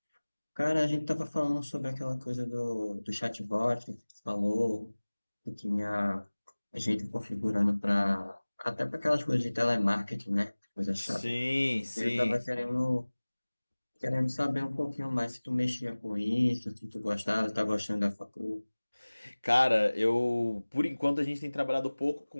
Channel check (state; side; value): inverted; both; correlation -1.00